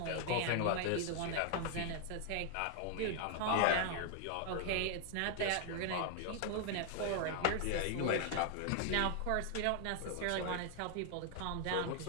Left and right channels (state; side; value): different; both; correlation 0.00